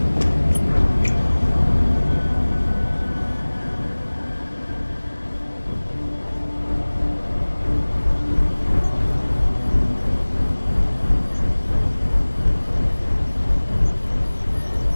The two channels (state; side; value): inverted; both; correlation -1.00